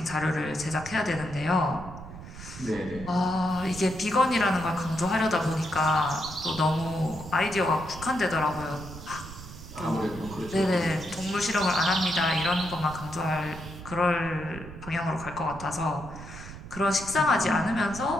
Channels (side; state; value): right; noise; rumble, 13 dB below the sound